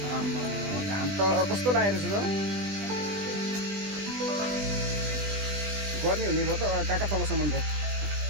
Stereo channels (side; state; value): left; late; 20 ms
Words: आम्मा घाम त कस्तो लागेको छ त। गर्मी हुने भयो त काका तलसम्म त।